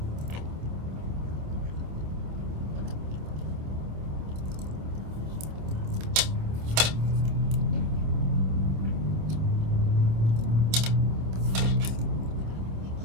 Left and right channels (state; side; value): late; left; 27 ms